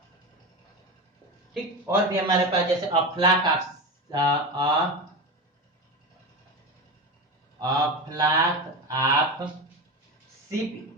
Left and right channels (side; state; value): both; normal; correlation 0.22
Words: ठीक, और भी हमारे पास जैसे a flock of sheep